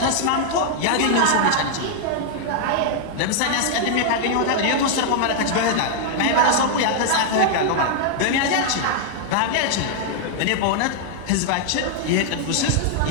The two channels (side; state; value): both; different; correlation -0.01